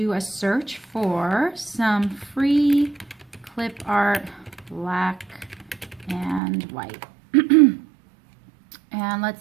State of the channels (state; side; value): drops out; left; at 6.4 s